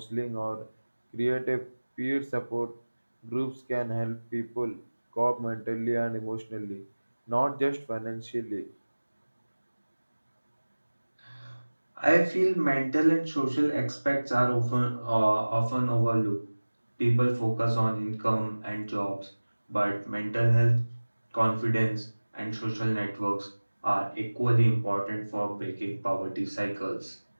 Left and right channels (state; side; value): inverted; both; correlation -1.00